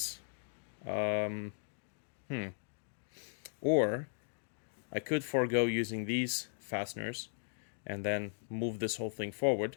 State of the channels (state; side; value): silent; right; digital silence